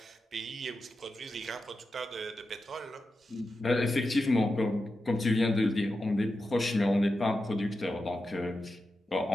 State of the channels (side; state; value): both; normal; correlation 0.90